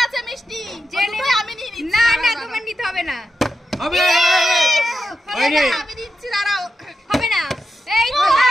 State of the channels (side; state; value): both; normal; correlation 0.88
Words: আছে মিষ্টি, যে নেবে আমি নিয়ে নিচ্ছি। না না তোমার নিতে হবে না। হবে হবে না, আমি দিচ্ছি, দাঁড়াও। হবে না। এই তো